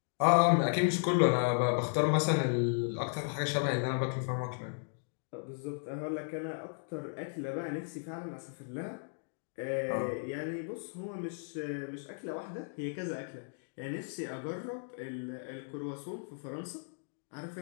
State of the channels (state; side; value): silent; right; digital silence